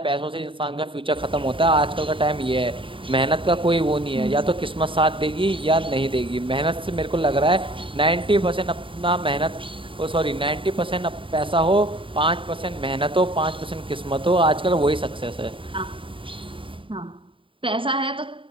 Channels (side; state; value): left; late; 0.25 ms